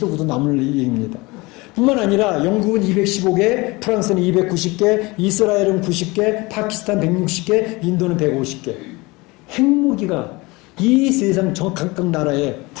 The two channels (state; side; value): quieter; right; 23.8 dB